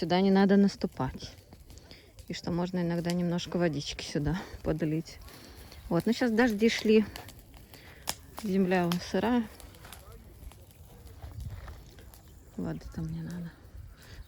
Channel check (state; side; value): identical; both; correlation 1.00